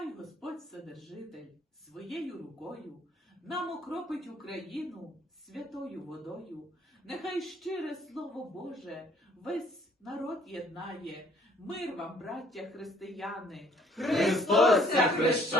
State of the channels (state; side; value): normal; both; correlation 0.60